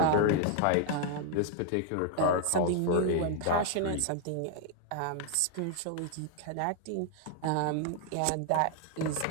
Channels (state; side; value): different; both; correlation 0.00